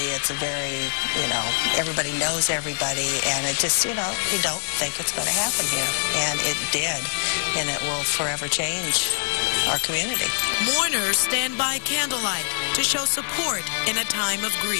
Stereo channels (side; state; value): right; silent; digital silence